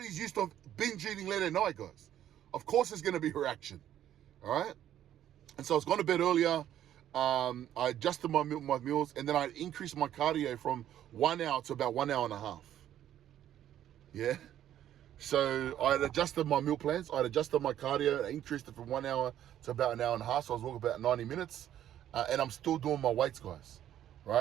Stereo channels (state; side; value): quieter; left; 11.4 dB